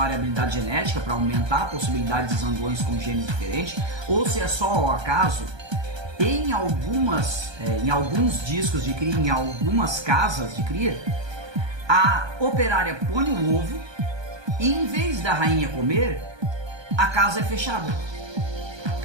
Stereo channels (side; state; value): left; late; 1.2 ms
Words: genética para aumentar a possibilidade de zangões com genes diferentes, ou se é só ao acaso. Em alguns discos de cria, em algumas casas de cria, a operária põe o ovo e em vez da rainha comer, a casa é fechada.